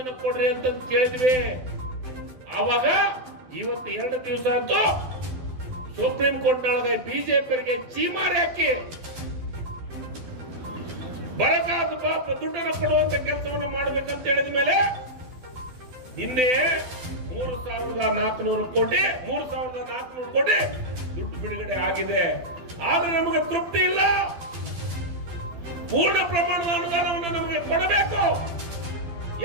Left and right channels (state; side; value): late; left; 12 ms